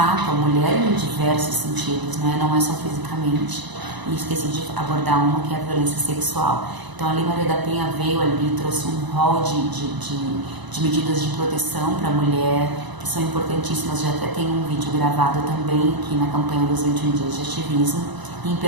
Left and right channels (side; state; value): left; late; 1.0 ms